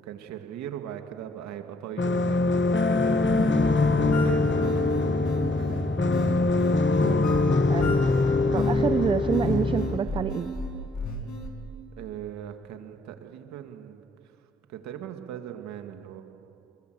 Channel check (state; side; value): normal; both; correlation 0.67